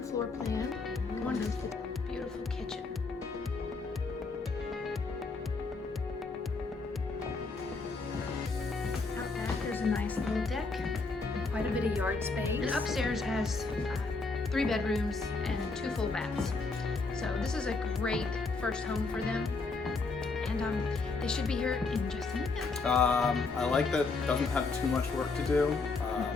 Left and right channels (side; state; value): right; quieter; 4.0 dB